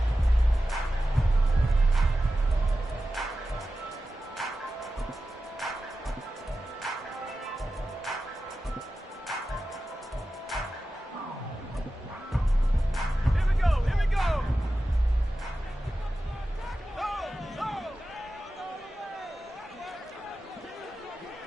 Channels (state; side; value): normal; both; correlation 0.93